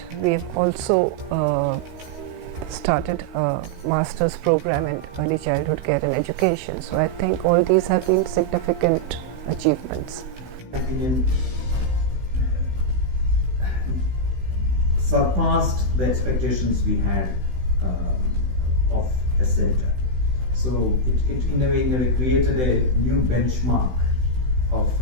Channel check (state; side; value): late; left; 16 ms